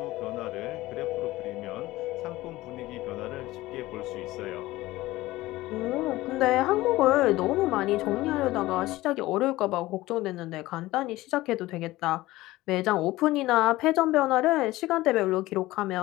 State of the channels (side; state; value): right; quieter; 17.8 dB